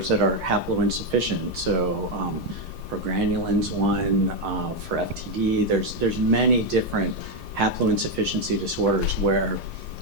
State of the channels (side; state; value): both; normal; correlation 0.05